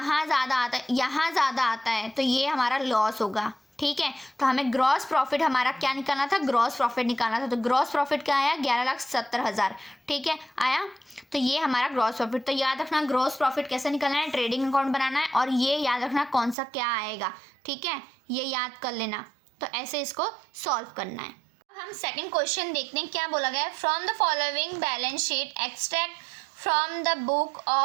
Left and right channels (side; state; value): left; drops out; at 16.6 s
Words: ज़्यादा आता है, यहाँ ज़्यादा आता है तो ये हमारा लॉस होगा। ठीक है, तो हमें ग्रॉस प्रॉफिट हमारा क्या निकालना था, ग्रॉस प्रॉफिट निकालना था। तो ग्रॉस प्रॉफिट क्या आया, 11,70,000। ठीक है, आया, तो ये हमारा ग्रॉस प्रॉफिट। तो याद रखना ग्रॉस प्रॉफिट कैसे निकालना है, ट्रेडिंग अकाउंट बनाना है, और ये याद रखना कौन सा क्या आएगा। ठीक है, ये याद कर लेना। तो ऐसे इसको सॉल्व करना है। हम सेकेंड क्वेश्चन देखते हैं, क्या बोला गया है। From the following balance sheet extract from the book